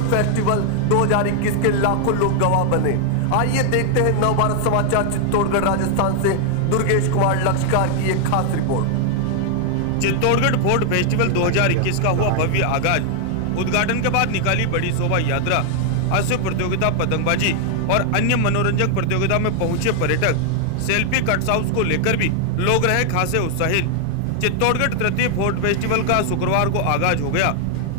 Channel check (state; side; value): different; both; correlation 0.00